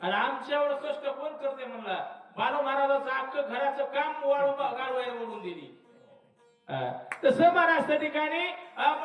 आणि आमच्या एवढं कष्ट कोण करते म्हणला. बालू महाराजाचं अख्खं घराचं काम गाढवायला ओढून दिली. तसं महाराज त्या ठिकाणी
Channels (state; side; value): identical; both; correlation 1.00